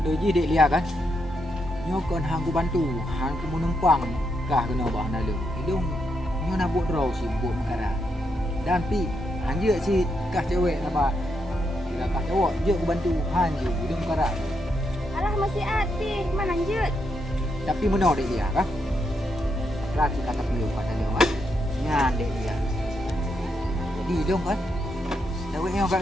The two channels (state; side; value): normal; both; correlation 0.81